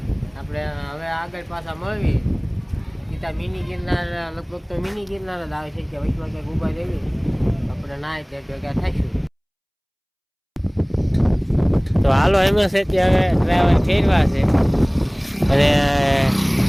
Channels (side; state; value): both; identical; correlation 1.00